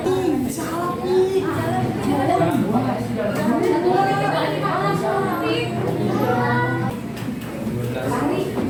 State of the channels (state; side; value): identical; both; correlation 1.00